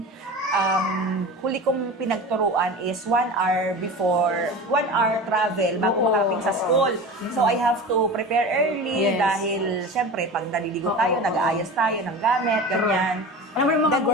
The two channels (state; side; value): normal; both; correlation 0.32